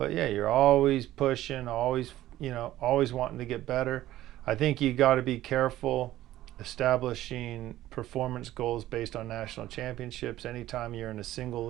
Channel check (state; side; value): quieter; left; 14.5 dB